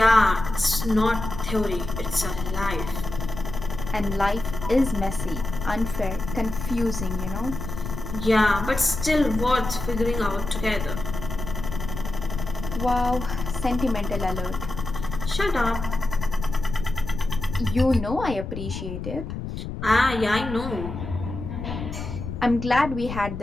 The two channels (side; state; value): left; noise; rumble, 7 dB below the sound